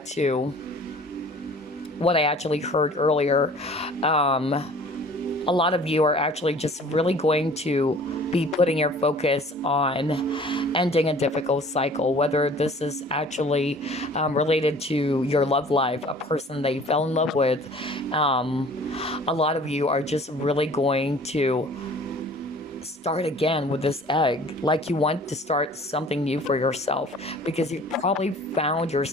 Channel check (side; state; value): both; normal; correlation 0.49